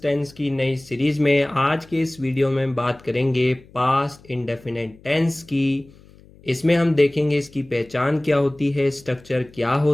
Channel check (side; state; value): left; noise; hum, 25 dB below the sound